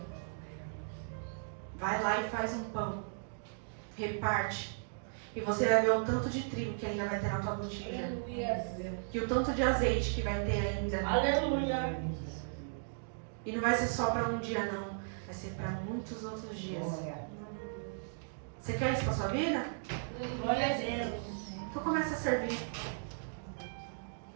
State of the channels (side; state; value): left; silent; digital silence